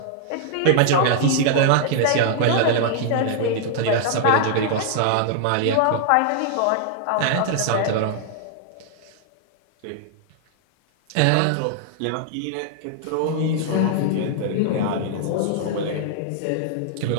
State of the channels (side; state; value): both; different; correlation -0.01